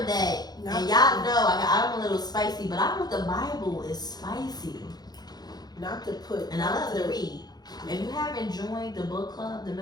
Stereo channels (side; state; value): right; late; 0.19 ms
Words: that, and y'all know I'm a little spicy, but I heard the Bible is spicy. Not to put. And I love to read. If you haven't joined the book club, the